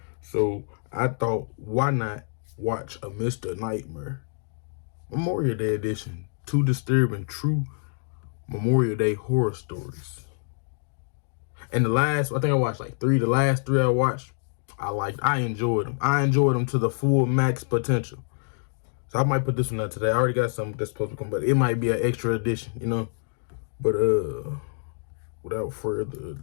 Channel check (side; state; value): right; silent; 61 dB below the other